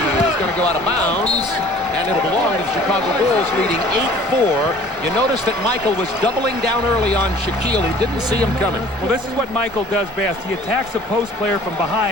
going to go out of bounds, and it'll belong to the Chicago Bulls, leading 8-4. You notice that Michael was doubling down early on Shaquille. He didn't see him coming. Well, this is what Michael does best. He attacks a post player from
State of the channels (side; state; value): both; normal; correlation 0.50